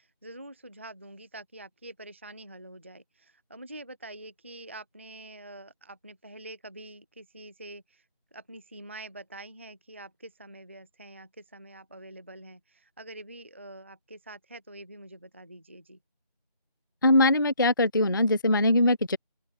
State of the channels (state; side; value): inverted; both; correlation -0.62